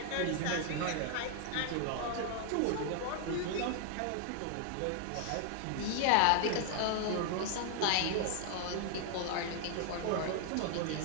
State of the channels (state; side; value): different; both; correlation 0.00